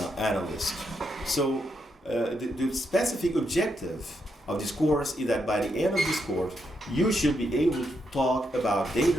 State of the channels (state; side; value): normal; both; correlation 0.81